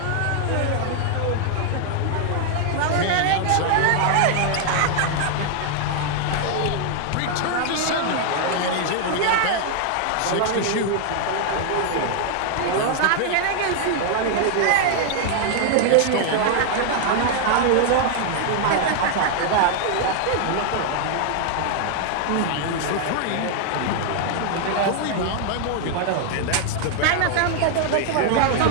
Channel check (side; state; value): both; different; correlation 0.00